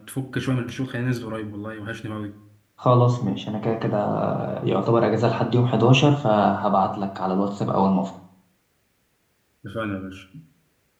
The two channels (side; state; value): both; identical; correlation 1.00